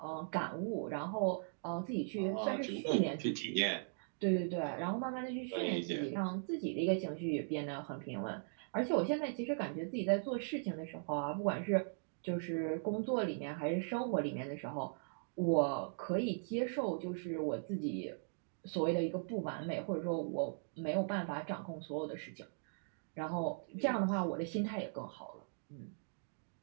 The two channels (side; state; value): left; silent; digital silence